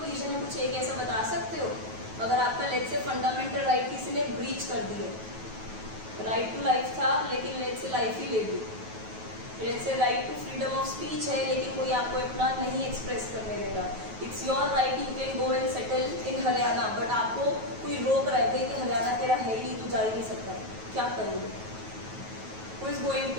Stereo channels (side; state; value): left; late; 9.2 ms